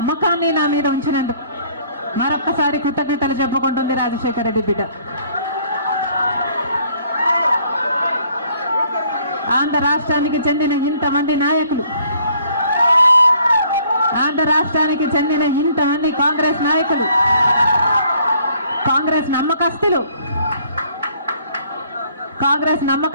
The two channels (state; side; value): inverted; both; correlation -0.61